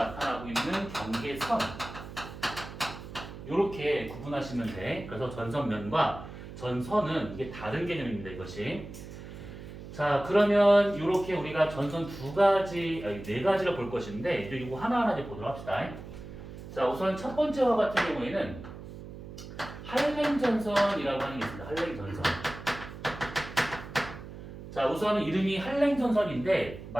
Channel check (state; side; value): noise; right; hum, 12 dB below the sound